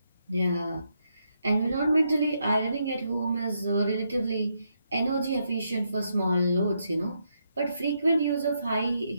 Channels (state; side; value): inverted; both; correlation -0.79